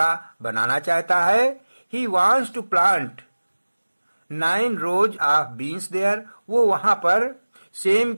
बनाना चाहता है। He wants to plant 9 rows of beans there. वो वहां पर सेम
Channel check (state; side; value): inverted; both; correlation -1.00